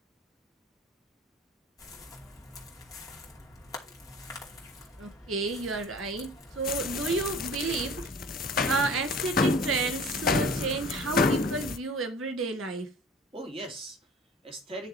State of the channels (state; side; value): normal; both; correlation 0.44